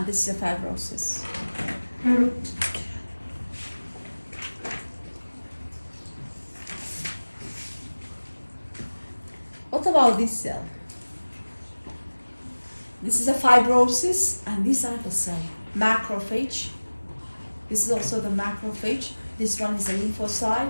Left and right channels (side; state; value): both; inverted; correlation -1.00